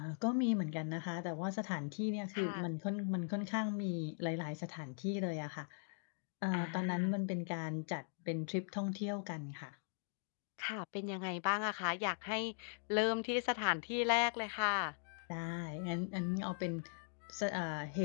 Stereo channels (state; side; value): silent; right; digital silence